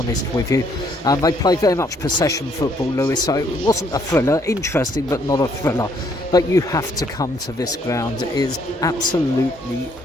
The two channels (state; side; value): normal; both; correlation 0.68